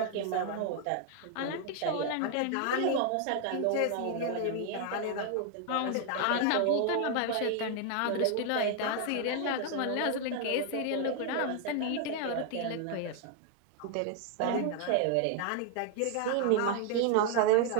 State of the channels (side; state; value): both; different; correlation 0.00